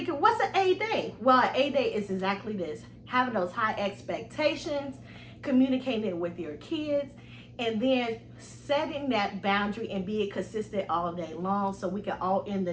what's an A day? Well, an A day is exactly this: having those high expectations, communicating it with your kids, and then setting that boundary and being consistent all day long, so we can all end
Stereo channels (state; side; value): identical; both; correlation 1.00